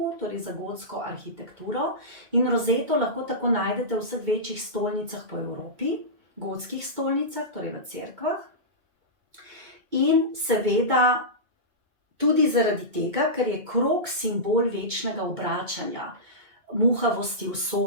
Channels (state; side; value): late; left; 2.2 ms